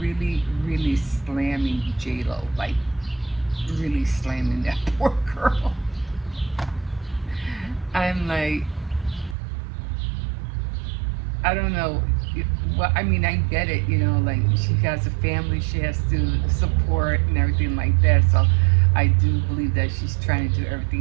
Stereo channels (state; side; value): drops out; left; at 9.3 s